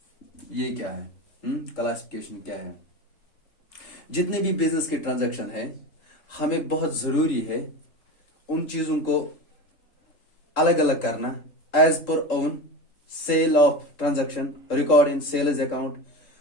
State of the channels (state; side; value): late; right; 3.8 ms